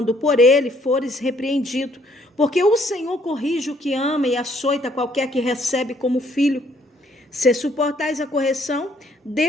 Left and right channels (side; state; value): both; normal; correlation 0.66